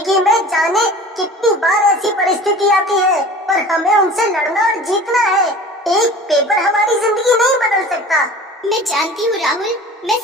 में जाने कितनी बार ऐसी परिस्थिति आती है, पर हमें उनसे लड़ना और जीतना है। एक पेपर हमारी जिंदगी नहीं बदल सकता। मैं जानती हूँ राहुल, मैं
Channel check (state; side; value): normal; both; correlation 0.41